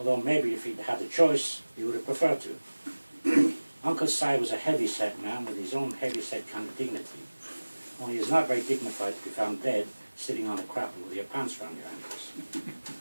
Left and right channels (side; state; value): both; inverted; correlation -1.00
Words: maybe if he'd had the choice, he would have preferred to. Uncle Si was a heavy-set man with his own heavy-set kind of dignity. Only he's not very dignified to be found dead sitting on a crapple with your pants round your ankles,